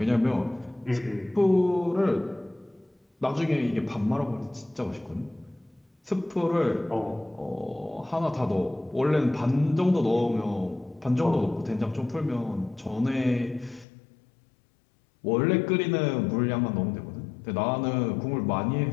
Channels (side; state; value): right; drops out; at 13.9 s